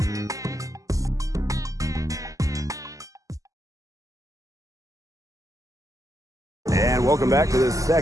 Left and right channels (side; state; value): left; late; 0.16 ms